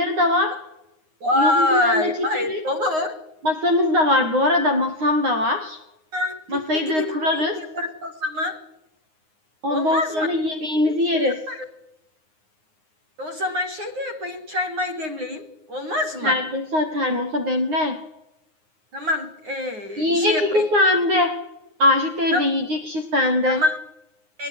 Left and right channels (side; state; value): left; late; 9.6 ms